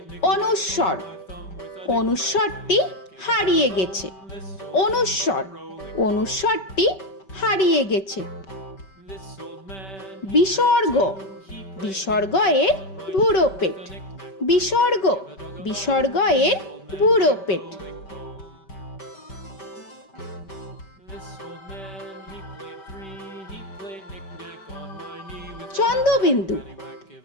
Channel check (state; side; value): late; right; 5.2 ms